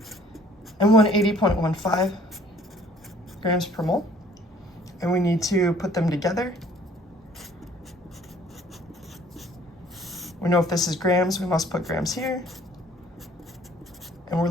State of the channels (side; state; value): both; normal; correlation 0.56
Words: and 180.15 grams per mole. And we need to put them together. We know if this is grams, we must put grams here. And we're